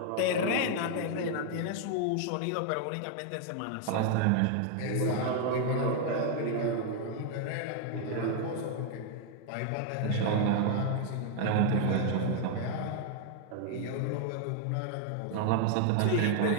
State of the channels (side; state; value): both; different; correlation 0.00